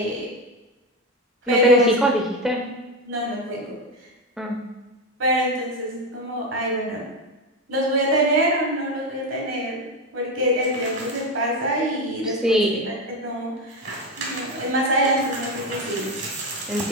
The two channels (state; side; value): normal; both; correlation 0.14